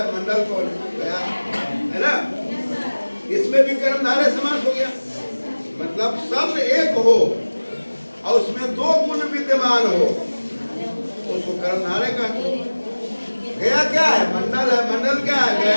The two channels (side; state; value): both; inverted; correlation -1.00